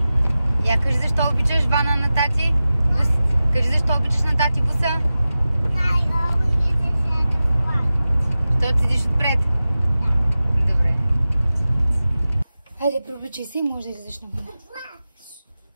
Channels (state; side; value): inverted; both; correlation -0.95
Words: Я кажи защо обичаш вана на тати? Кажи защо обичаш на тати буса? Защото седиш отпред? Добре. Хайде, преобличай се и може да излезеш навън.